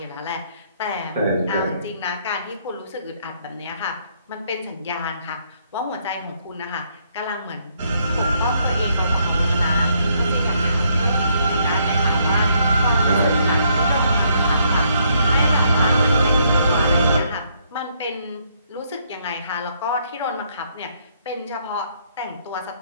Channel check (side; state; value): both; inverted; correlation -0.71